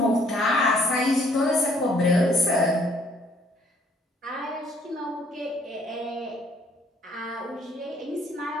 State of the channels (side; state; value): both; normal; correlation 0.63